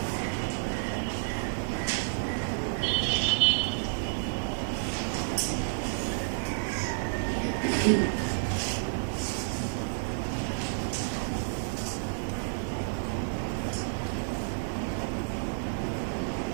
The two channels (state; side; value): silent; left; 58 dB below the other